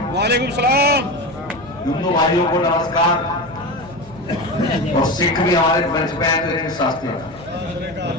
वालेकुम सलाम। हिंदू भाइयों को नमस्कार और सिख भी हमारे मंच पे हैं तो इनके शास्त्री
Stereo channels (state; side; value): noise; left; hum, 22 dB below the sound